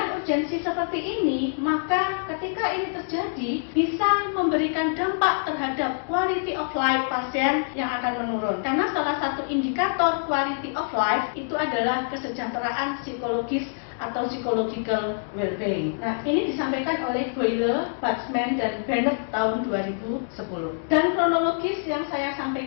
urgensi seperti ini, maka ketika ini terjadi bisa memberikan dampak terhadap quality of life pasien yang akan menurun. Karena salah satu indikator quality of life itu adalah kesejahteraan psikologis atau psychological well-being. Nah, ini disampaikan oleh Boyle, Batsman, dan Bennett tahun 2010. Dan kronologis yang saya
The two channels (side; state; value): right; silent; digital silence